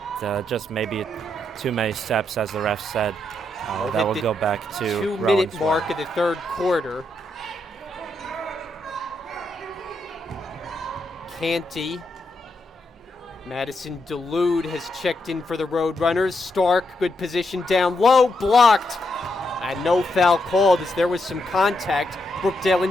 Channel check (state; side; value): normal; both; correlation 0.81